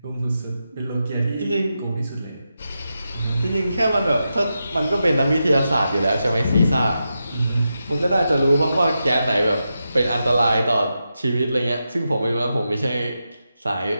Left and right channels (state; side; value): inverted; both; correlation -0.88